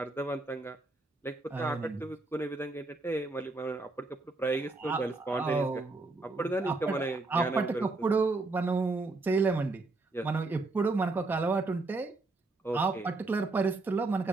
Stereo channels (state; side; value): quieter; left; 3.3 dB